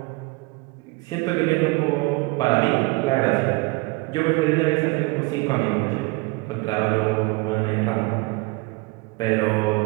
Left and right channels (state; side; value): quieter; left; 25.0 dB